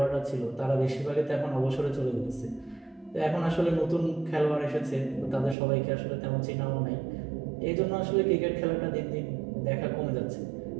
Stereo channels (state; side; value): drops out; left; at 5.6 s